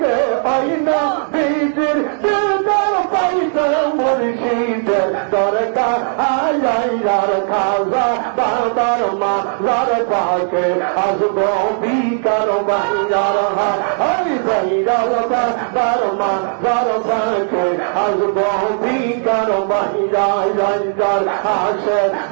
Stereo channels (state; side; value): silent; left; digital silence